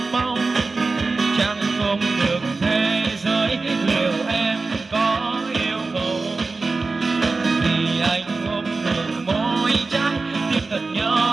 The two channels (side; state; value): left; quieter; 3.8 dB